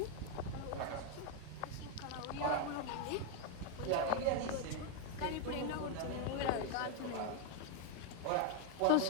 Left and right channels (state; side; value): different; both; correlation 0.01